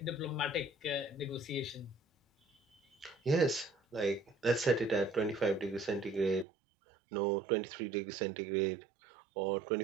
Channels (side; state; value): left; drops out; at 6.5 s